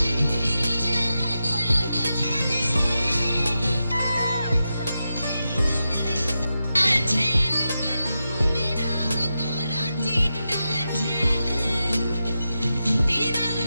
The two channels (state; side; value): inverted; both; correlation -0.89